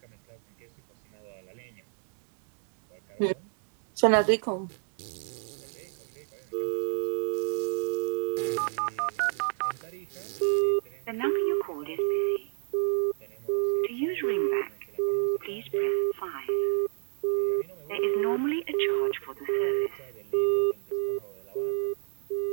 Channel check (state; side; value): silent; left; digital silence